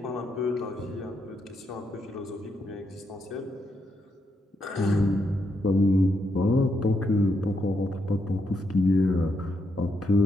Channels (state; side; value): normal; both; correlation 0.80